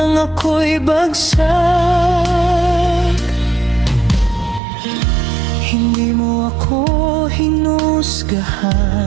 ako'y bagsak? Hindi mo ako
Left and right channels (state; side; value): drops out; left; at 4.6 s